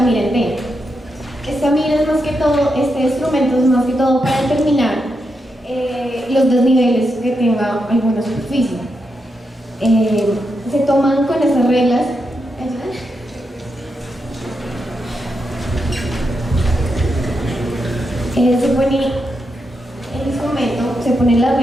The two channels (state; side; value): normal; both; correlation 0.84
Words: en T. Esta mira es más que todo, este instrumento es más que todo para determinar los desniveles que tenga alguna superficie. Se toman con estas reglas. Se pone el instrumento, se ponen las